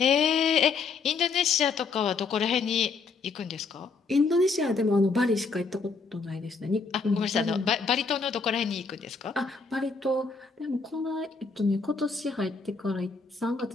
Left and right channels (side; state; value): right; quieter; 4.6 dB